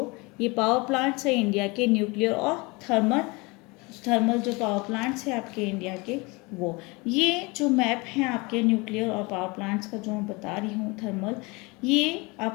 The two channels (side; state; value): right; quieter; 26.3 dB